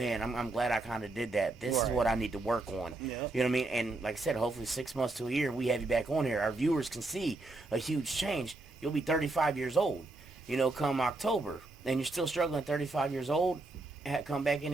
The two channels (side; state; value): left; quieter; 3.0 dB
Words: I'm glad I kind of did that. This is Right. what I need to work on. Yeah. You know what I mean? And like I said, hopefully 6 months to a year, we have you back on here. Our viewers can see a huge change. You'll be 35 years old, you know, come October. And you're still struggling at 35 years old, come back in